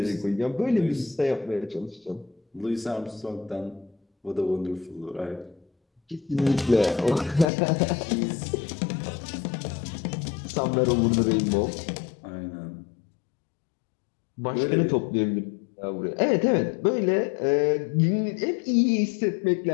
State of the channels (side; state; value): right; drops out; at 7.5 s